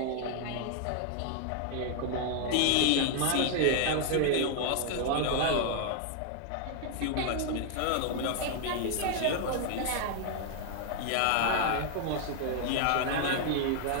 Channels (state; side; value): different; both; correlation 0.00